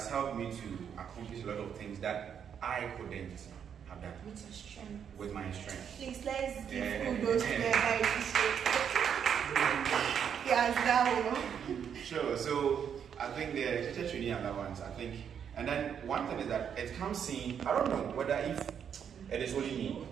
helped me to accomplish a lot of things that I couldn't have done. With your strength. With my strength. Please, let's give kudos to the Yes, that one. Sure. So I think the teacher training allowance, and then one thing is that it comes in, I don't know whether if it is only me.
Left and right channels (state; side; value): quieter; left; 8.0 dB